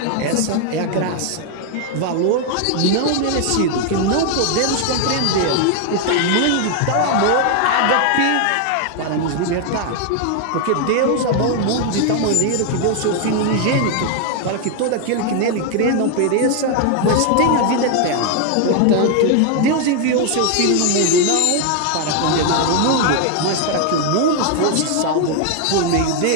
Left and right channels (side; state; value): both; different; correlation 0.00